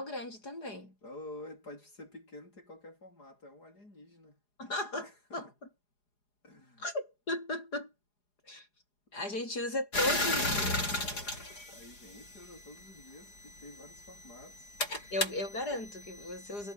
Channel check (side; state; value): right; late; 4.8 ms